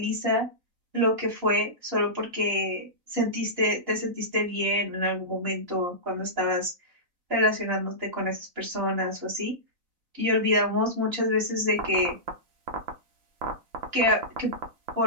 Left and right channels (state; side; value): late; left; 4.0 ms